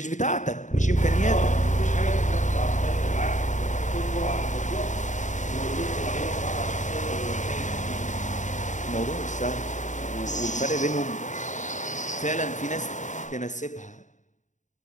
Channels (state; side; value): late; right; 0.36 ms